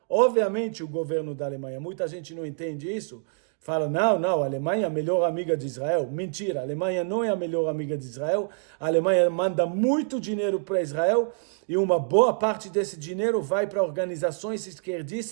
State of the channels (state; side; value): silent; left; digital silence